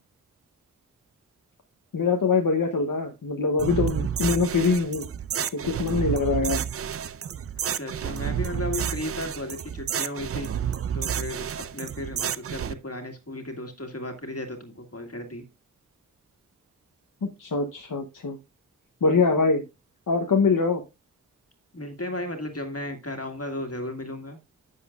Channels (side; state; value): both; normal; correlation 0.03